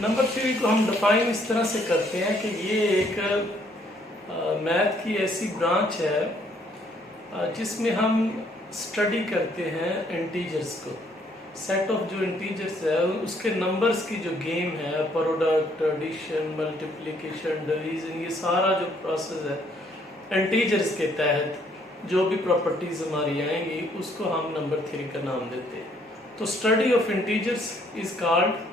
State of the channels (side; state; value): both; normal; correlation 0.66